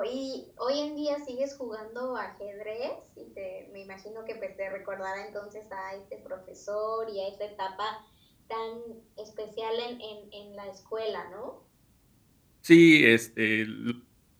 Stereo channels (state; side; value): identical; both; correlation 1.00